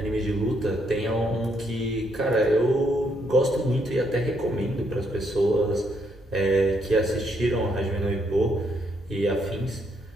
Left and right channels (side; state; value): both; normal; correlation 0.74